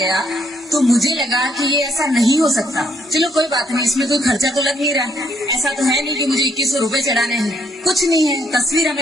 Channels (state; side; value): normal; both; correlation 0.70